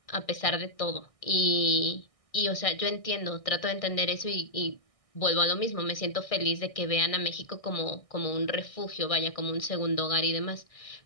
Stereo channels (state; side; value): late; right; 1.6 ms